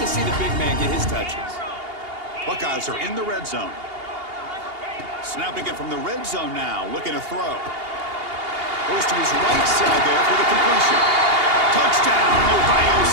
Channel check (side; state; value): left; late; 2.8 ms